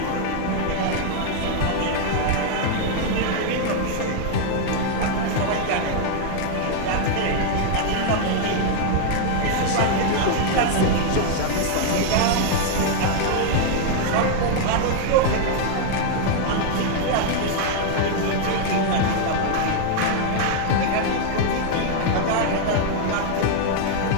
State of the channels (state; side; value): different; both; correlation 0.00